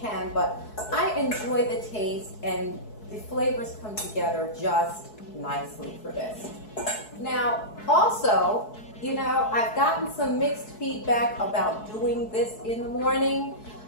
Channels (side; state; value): right; late; 4.7 ms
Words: but I enjoy the taste and the flavors come together just nicely for this. Now, also, you know, I've gotten some mixed feedback about doing this in the morning,